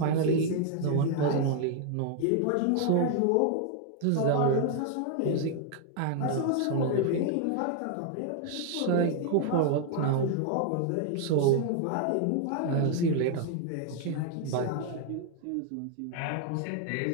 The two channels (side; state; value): both; different; correlation 0.00